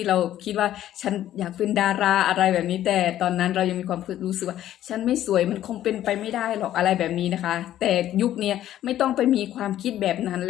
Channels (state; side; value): quieter; right; 12.4 dB